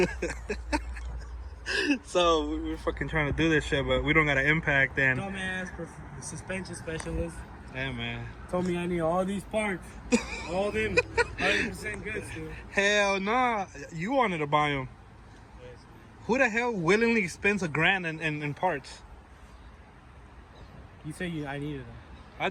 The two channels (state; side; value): identical; both; correlation 1.00